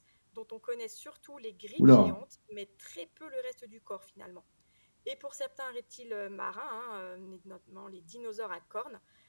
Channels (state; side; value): inverted; both; correlation -1.00